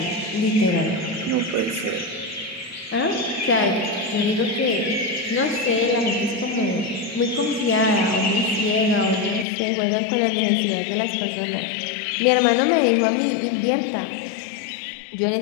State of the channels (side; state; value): right; drops out; at 9.5 s